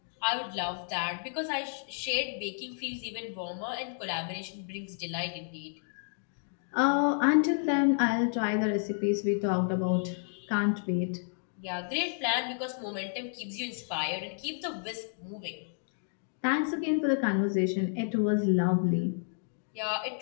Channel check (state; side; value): silent; right; digital silence